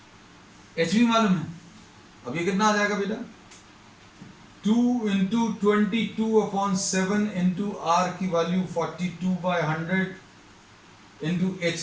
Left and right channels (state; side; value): identical; both; correlation 1.00